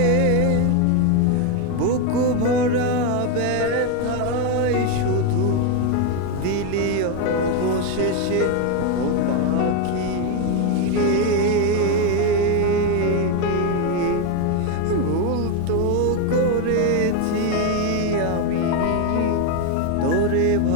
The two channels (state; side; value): different; both; correlation 0.02